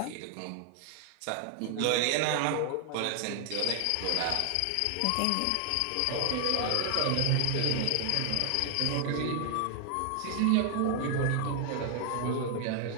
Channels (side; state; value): both; different; correlation 0.00